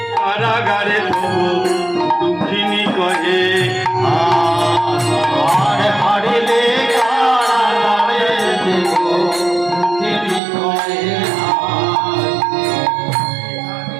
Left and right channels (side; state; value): left; drops out; at 10.4 s